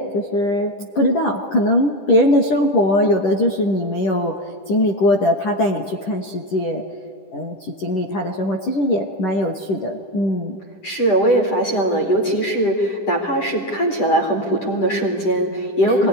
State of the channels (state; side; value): late; right; 10 ms